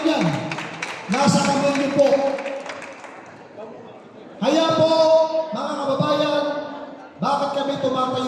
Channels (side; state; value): both; identical; correlation 1.00